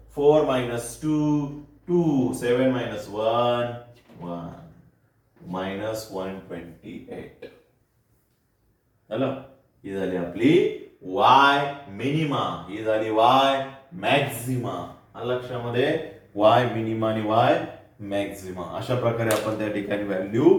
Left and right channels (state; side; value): identical; both; correlation 1.00